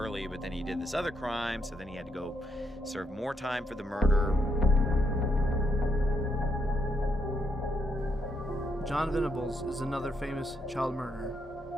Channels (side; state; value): both; normal; correlation 0.78